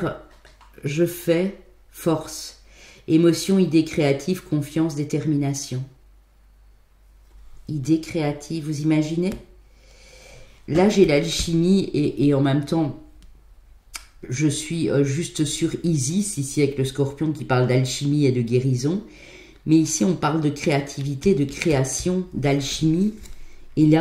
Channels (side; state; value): both; identical; correlation 1.00